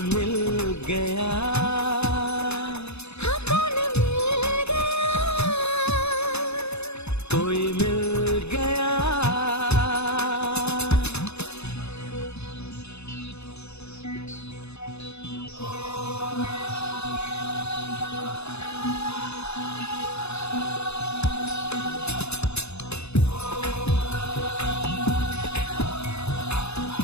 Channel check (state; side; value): late; right; 0.80 ms